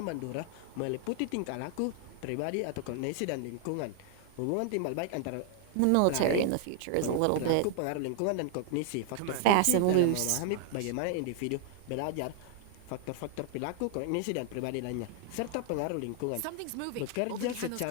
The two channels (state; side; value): different; both; correlation 0.00